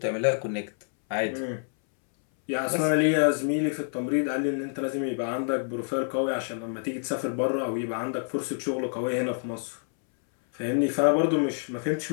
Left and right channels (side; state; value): right; silent; 60 dB below the other